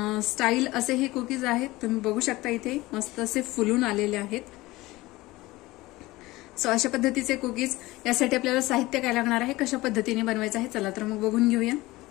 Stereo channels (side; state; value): right; quieter; 19.5 dB